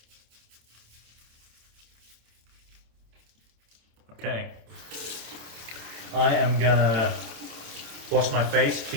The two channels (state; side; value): late; left; 27 ms